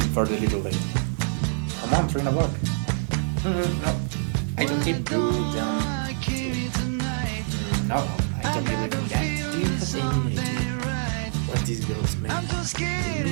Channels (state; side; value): silent; left; digital silence